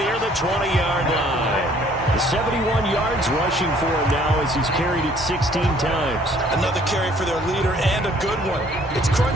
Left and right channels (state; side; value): normal; both; correlation 0.59